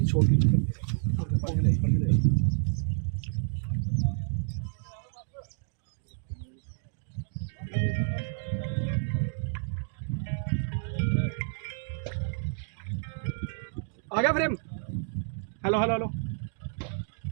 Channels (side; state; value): left; silent; digital silence